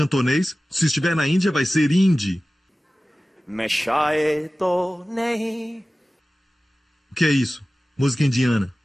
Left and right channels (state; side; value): normal; both; correlation 0.96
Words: Se estiver na Índia, vai ser hindi. O que é isso? Música indiana.